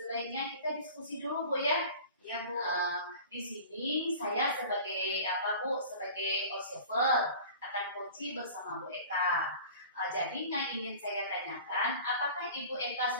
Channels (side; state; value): both; inverted; correlation -0.41